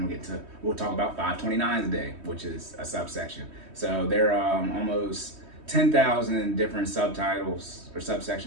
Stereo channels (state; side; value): late; left; 3.2 ms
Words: We'll talk about 529s a day, which is a subsection. So there are almost 10,000 different subtitles or